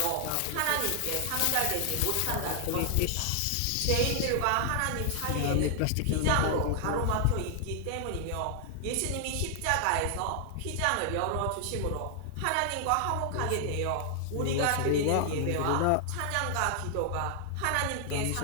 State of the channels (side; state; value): both; different; correlation 0.00